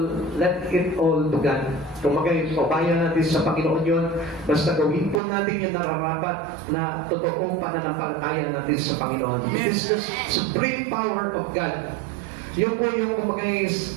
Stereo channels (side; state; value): left; drops out; at 5.2 s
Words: it all to God. Kung magpapayan natin sa Panginoon yun, basta gawin po natin yung nararapat na totoong pananampalataya natin sa Panginoon. It is the supreme power of God. Yun po yung